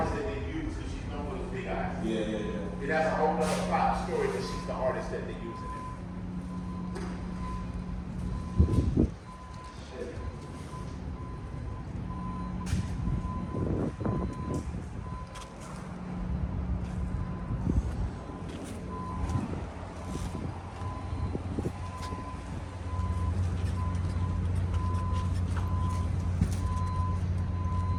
that they used because she's known for those big eyes. Yeah. It has a whole other plot story, but she's the artist that they use in it.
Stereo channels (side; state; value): both; identical; correlation 1.00